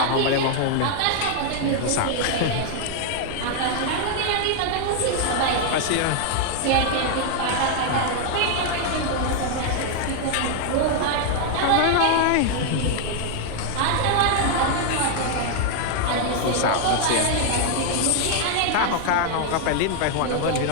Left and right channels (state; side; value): different; both; correlation 0.00